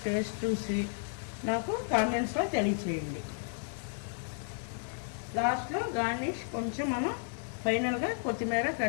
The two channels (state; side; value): silent; right; 56 dB below the other